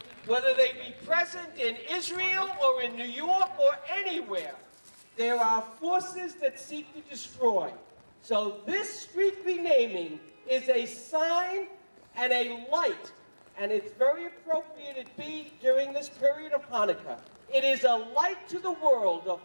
whether they be present in Israel or in New York or anywhere. There are forces that seek to destroy. So this street renaming is a sign and a light, and it's very appropriate it be during this period of Hanukkah. It is a light to the world of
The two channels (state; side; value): inverted; both; correlation -1.00